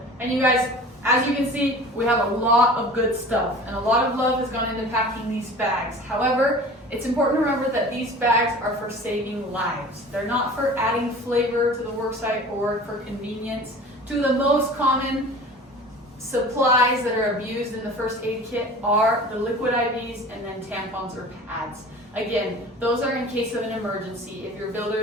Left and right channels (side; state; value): both; normal; correlation 0.41